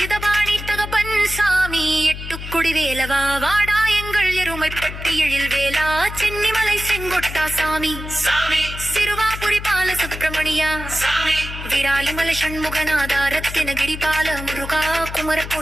தகப்பன் சாமி, எட்டுக்குடி வேலவா, வாடா எங்கள் எருமைப்பட்டி எழில் வேலா, சென்னிமலை செங்கொட்டா சாமி, சிறுவாபுரி பால சுப்பிரமணியா, விராலிமலை சண்முகநாதா, ரத்தினகிரி பால முருகா,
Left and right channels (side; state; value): left; noise; hum, 9 dB below the sound